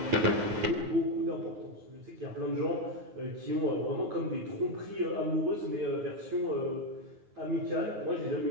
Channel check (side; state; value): left; late; 9.5 ms